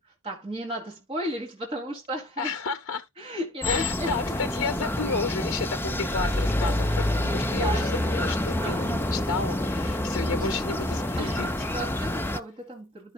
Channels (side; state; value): both; normal; correlation 0.53